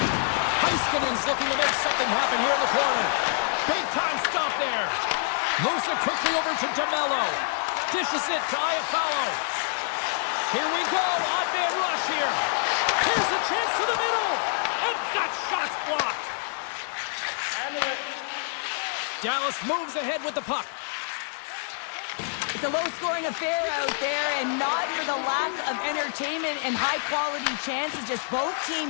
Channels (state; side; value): silent; right; 60 dB below the other